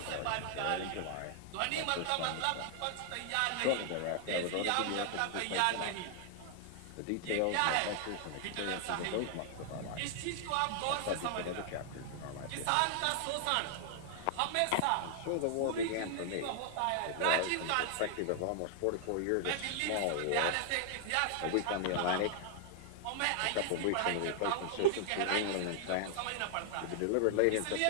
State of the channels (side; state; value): both; different; correlation 0.00